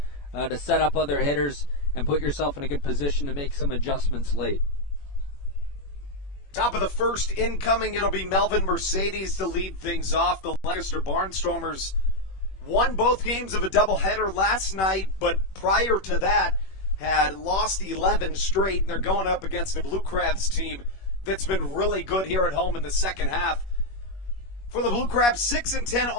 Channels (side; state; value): right; late; 21 ms